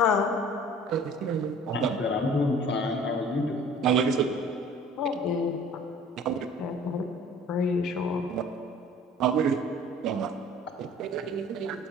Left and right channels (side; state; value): both; normal; correlation 0.48